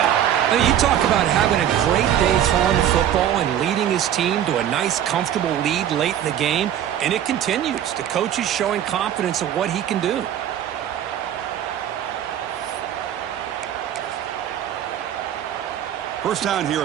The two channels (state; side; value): quieter; left; 10.6 dB